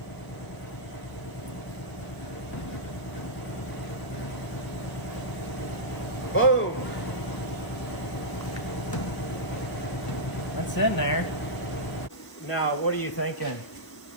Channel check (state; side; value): late; right; 1.0 ms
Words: Boom. That's in there. Now, what are you thinking?